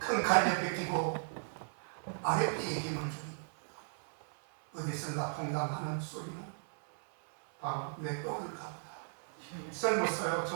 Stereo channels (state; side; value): silent; left; 54 dB below the other